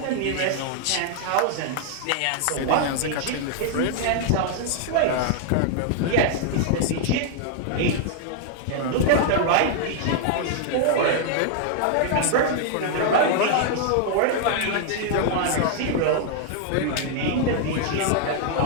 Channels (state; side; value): different; both; correlation 0.00